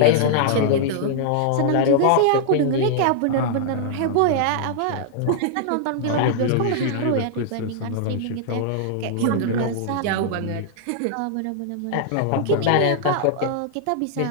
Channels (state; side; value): different; both; correlation -0.01